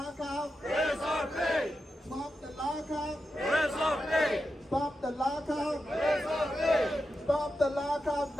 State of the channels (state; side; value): normal; both; correlation 0.89